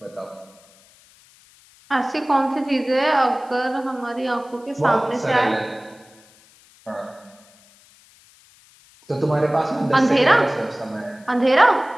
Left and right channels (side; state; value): left; noise; hiss, 28 dB below the sound